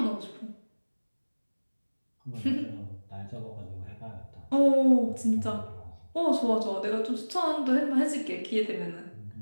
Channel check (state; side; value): inverted; both; correlation -1.00